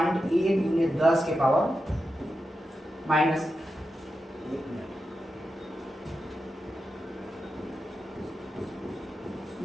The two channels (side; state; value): both; normal; correlation 0.89